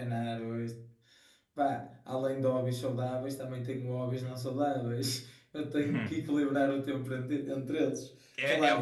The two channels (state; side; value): identical; both; correlation 1.00